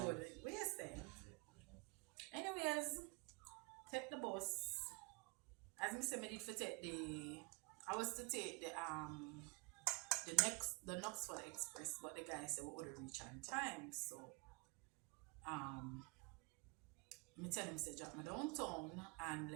Where's that? Anyways, take the bus. As me say, me did for take the. I was to take the Knoxville Express, but the guy said we would reach on time. So um me tell him say drop me downtown and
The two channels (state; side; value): quieter; left; 30.3 dB